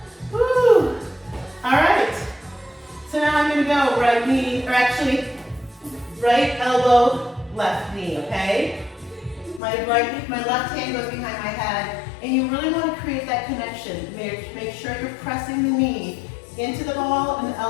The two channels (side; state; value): right; drops out; at 9.6 s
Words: Woo! All right. So now I'm going to go right knee, or actually right elbow, left knee, okay? My left hand goes behind my head, and you really want to create that connection. Make sure you're pressing the knee into the ball and the